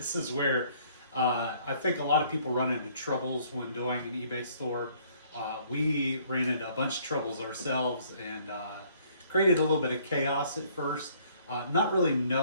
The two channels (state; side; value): inverted; both; correlation -0.61